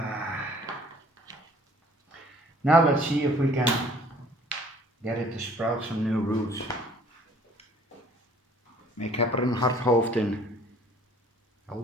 Now let's see if we can get it to sprout some new roots. Ik heb er een hard hoofd in.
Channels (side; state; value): both; normal; correlation 0.55